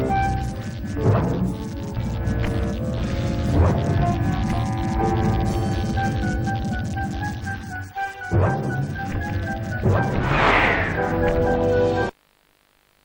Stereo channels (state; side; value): identical; both; correlation 1.00